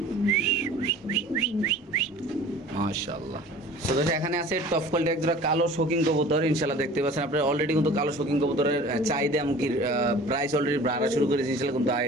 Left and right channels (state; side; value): normal; both; correlation 0.45